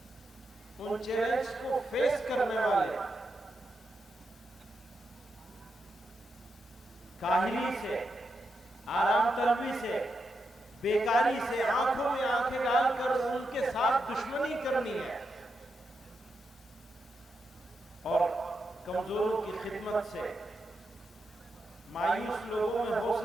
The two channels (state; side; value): normal; both; correlation 0.85